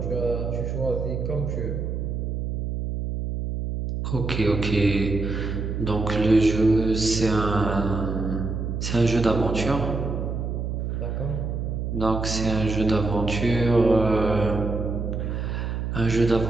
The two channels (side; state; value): right; noise; hum, 3 dB below the sound